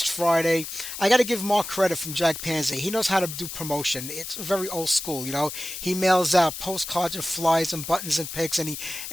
Friday. I got to give Mark credit from Jack Panzer. He knows how to do promotion. It's very old school, you know. He mails out postcards and flyers and buttons and pics, and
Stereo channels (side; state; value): left; noise; hiss, 8 dB below the sound